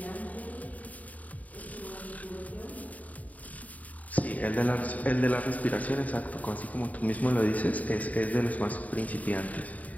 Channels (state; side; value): late; right; 0.073 ms